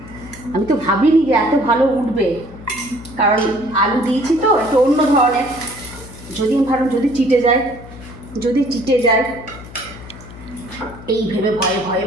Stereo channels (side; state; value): left; noise; hum, 16 dB below the sound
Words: আমি তো ভাবিনি যে এত ভালো উঠবে, কারণ আলু দিয়েছি তো একটু অন্য ধরনের। যদি আমি ভাবলাম যদি চিটে যায়, এই ভেবে ভয়ে ভয়ে